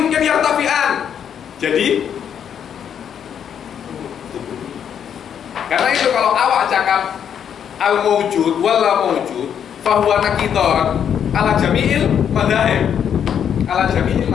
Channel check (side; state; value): right; quieter; 8.5 dB